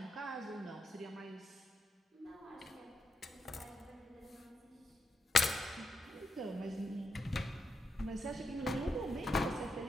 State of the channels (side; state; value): both; normal; correlation 0.83